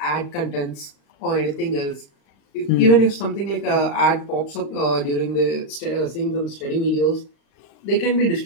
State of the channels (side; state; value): right; late; 35 ms